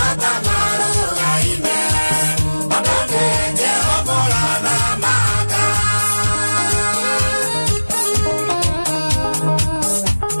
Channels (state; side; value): inverted; both; correlation -1.00